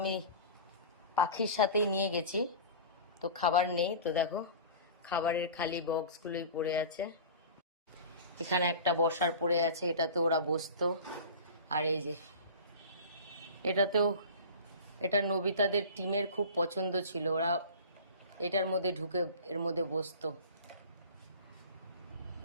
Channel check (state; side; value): inverted; both; correlation -0.37